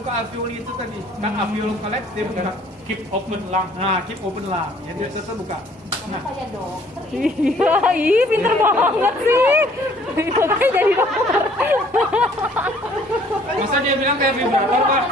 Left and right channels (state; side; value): normal; both; correlation 0.58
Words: alveoli itu tadi. Kan alveoli collapse, dia buka keep open lung. Nah, keep open lung. Jadi dia tetap buka. Nah, Iya, pinter banget sih. Makanya jadi dokter. masa dia bilang kayak vibrator, Pak?